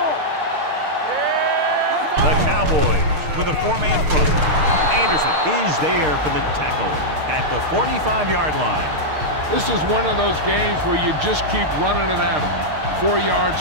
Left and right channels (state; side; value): late; left; 6.5 ms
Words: The Cowboys with a 4-man front. Anderson is there for the tackle at the 45-yard line. This is one of those games where you just keep running it at them. 4